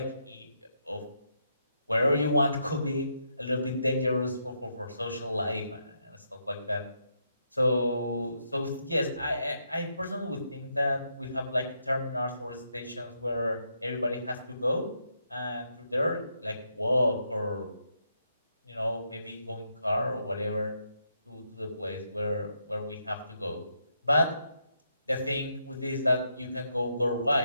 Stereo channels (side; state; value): both; inverted; correlation -0.80